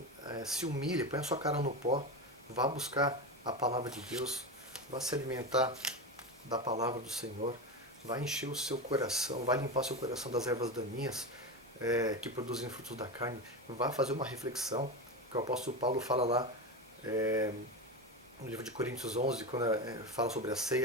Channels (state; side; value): normal; both; correlation 0.20